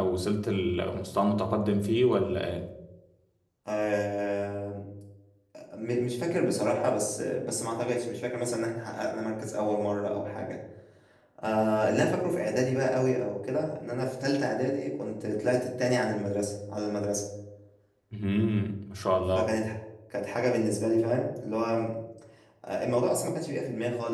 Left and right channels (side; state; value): both; identical; correlation 1.00